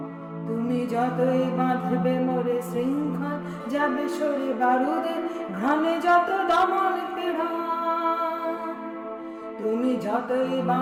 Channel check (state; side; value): identical; both; correlation 1.00